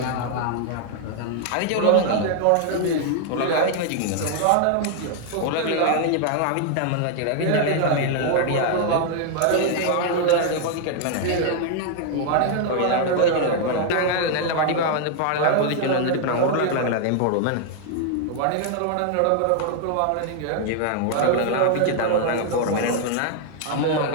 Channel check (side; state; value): both; different; correlation 0.00